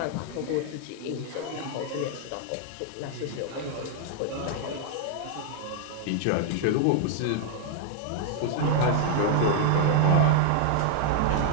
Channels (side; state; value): both; different; correlation 0.00